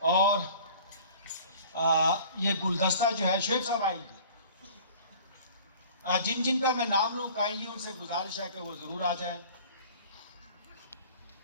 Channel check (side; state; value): both; inverted; correlation -0.46